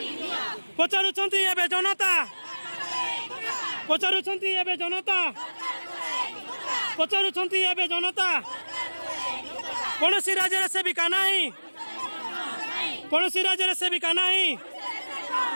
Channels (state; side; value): inverted; both; correlation -1.00